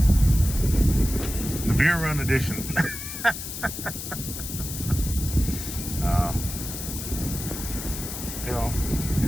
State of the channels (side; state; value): left; noise; hiss, 8 dB below the sound